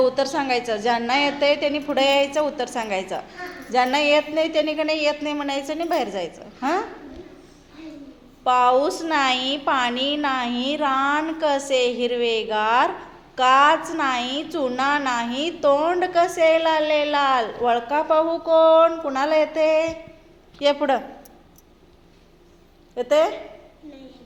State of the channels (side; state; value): both; identical; correlation 1.00